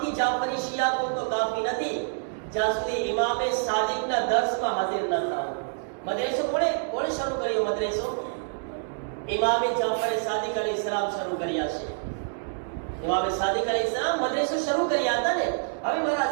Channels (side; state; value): left; silent; digital silence